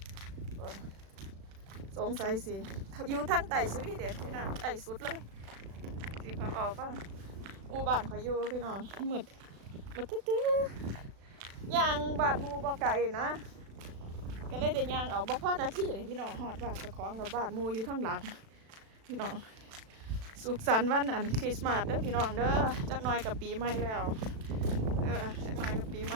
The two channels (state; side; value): late; left; 36 ms